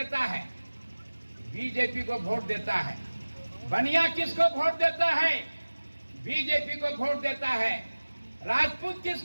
है? बीजेपी को वोट देता है। बनिया किसको वोट देता है? बीजेपी को वोट देता है। राजपूत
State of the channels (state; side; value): inverted; both; correlation -1.00